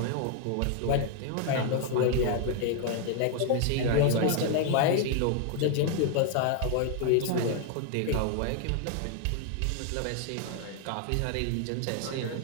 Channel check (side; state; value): both; different; correlation 0.00